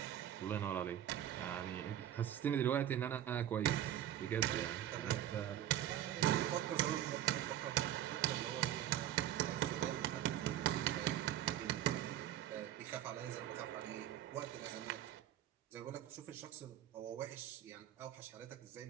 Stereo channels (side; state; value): left; quieter; 11.6 dB